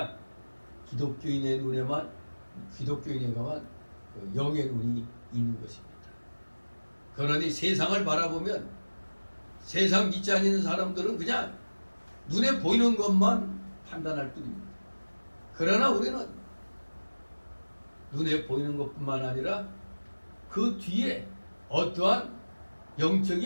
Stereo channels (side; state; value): both; inverted; correlation -1.00